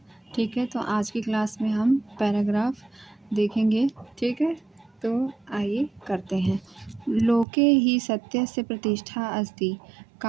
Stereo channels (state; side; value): drops out; left; at 7.5 s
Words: ठीक है, तो आज की क्लास में हम पैराग्राफ देखेंगे। ठीक है, तो आइए करते हैं। लोके ही सत्यस्य प्रतिष्ठा अस्ति,